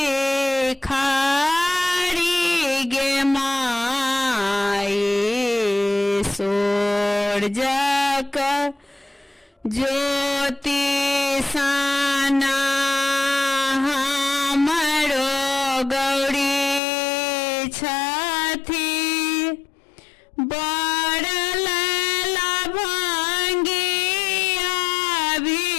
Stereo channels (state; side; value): drops out; right; at 16.8 s